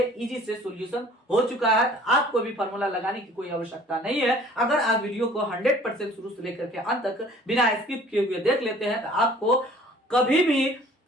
इजी से सॉल्यूशन हो चुका है। आपको भी फार्मूला लगाने की कोई आवश्यकता नहीं है। अगर आप वीडियो को 100% शुरू से लेकर के अंत तक बिना स्किप किए हुए देख लेते हैं तो आपको कभी भी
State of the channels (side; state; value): both; normal; correlation 0.52